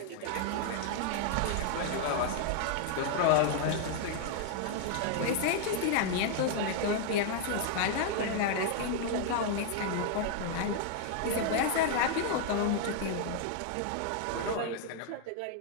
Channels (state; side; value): different; both; correlation 0.00